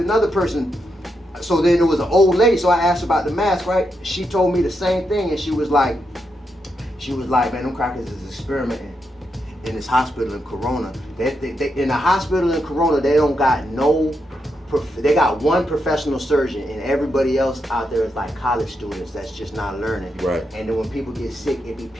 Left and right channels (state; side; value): normal; both; correlation 0.83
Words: person. So then it was an old lady, so I asked her about the mask, right? She told me the same thing, and she was like, man, them crackers is experimenting in this hospital in Corona. They in the hospital in Corona, they don't got they got one professional surgeon, and everybody else out there is like college students that's just not learning. Right. And then when people get sick, it be